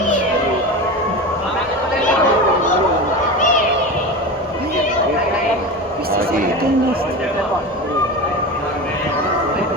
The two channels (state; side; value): normal; both; correlation 0.27